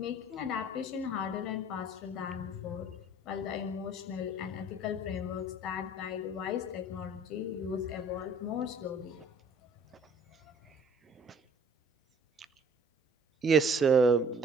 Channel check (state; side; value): normal; both; correlation 0.53